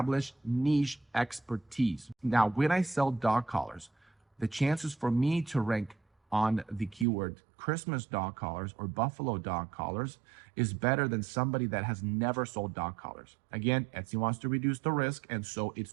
niche expertise. Now, when I sell dog collars, the chances for me to rank on the keyword Christmas dog collars or buffalo dog collars is better than somebody that has never sold dog collars. Again, Etsy wants to reduce the risk, and so it's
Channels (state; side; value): drops out; left; at 7.1 s